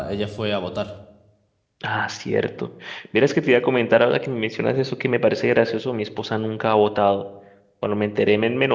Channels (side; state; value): both; identical; correlation 1.00